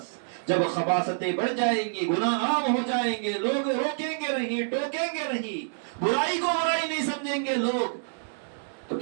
جب خباثتیں بڑھ جائیں گی، گناہ عام ہو جائیں گے، لوگ روکیں گے نہیں، ٹوکیں گے نہیں، برائی کو برائی نہیں سمجھیں گے لوگ، تو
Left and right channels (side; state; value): left; silent; digital silence